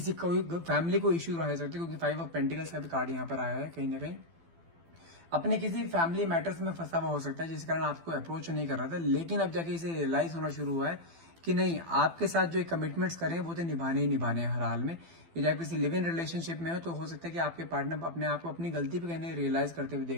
कोई फैमिली को इश्यू रह सकते, क्योंकि 5 ऑफ पेंटिकल्स का भी कार्ड यहाँ पर आया है। कहीं ना कहीं अपने किसी फैमिली मैटर्स में फंसा हुआ हो सकता है जिस कारण आपको अप्रोच नहीं कर रहा था, लेकिन अब जाके इसे रियलाइज होना शुरू हुआ है कि नहीं, आपके साथ जो कमिटमेंट्स करें वो तो निभाने ही निभाने हैं हर हाल में। यदि आप किसी लिव इन रिलेशनशिप में हो तो हो सकता है कि आपके पार्टनर अपने आप को अपनी गलती पे कहने रियलाइज करते हुए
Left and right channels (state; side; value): late; left; 12 ms